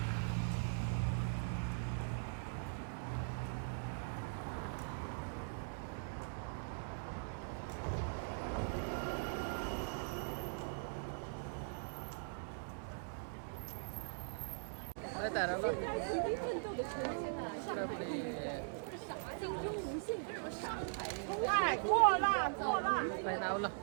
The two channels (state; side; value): silent; left; digital silence